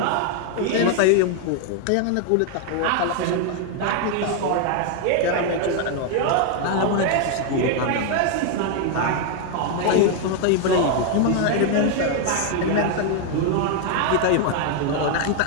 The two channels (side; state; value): both; different; correlation 0.01